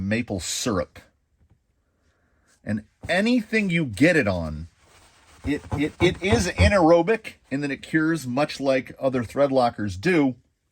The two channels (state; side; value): identical; both; correlation 1.00